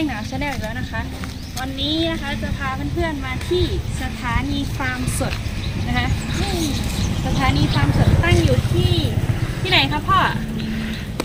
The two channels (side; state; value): both; identical; correlation 1.00